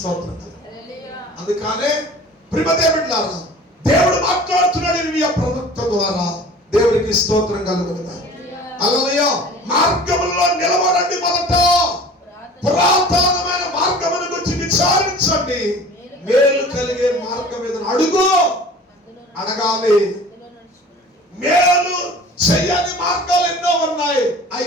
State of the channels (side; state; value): both; normal; correlation 0.43